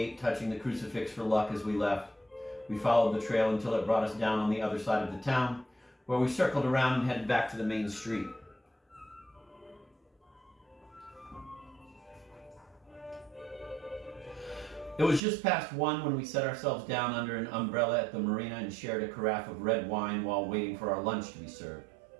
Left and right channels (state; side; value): drops out; left; at 15.2 s